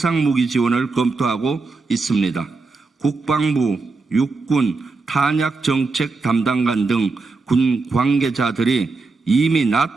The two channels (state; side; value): quieter; left; 3.9 dB